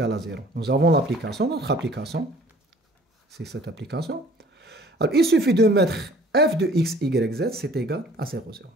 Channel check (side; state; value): both; normal; correlation 0.52